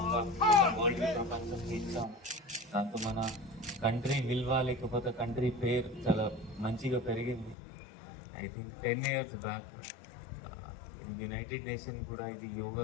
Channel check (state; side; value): drops out; right; at 7.6 s